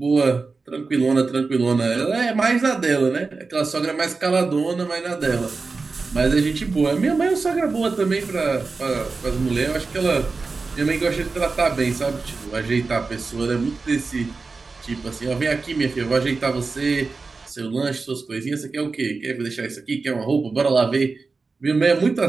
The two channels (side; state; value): left; quieter; 4.2 dB